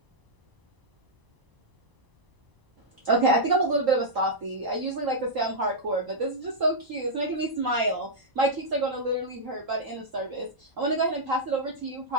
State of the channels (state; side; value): late; left; 1.0 ms